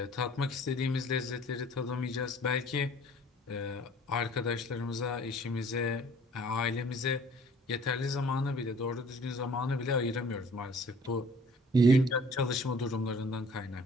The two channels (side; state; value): both; normal; correlation 0.53